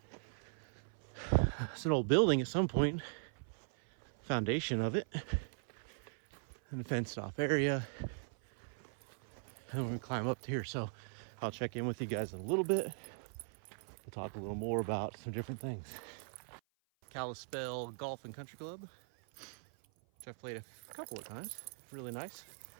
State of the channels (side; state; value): left; silent; 51 dB below the other